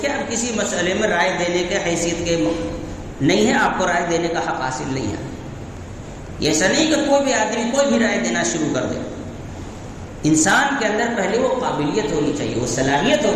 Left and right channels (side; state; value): both; identical; correlation 1.00